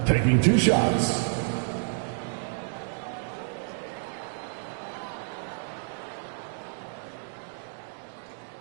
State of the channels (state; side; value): silent; left; digital silence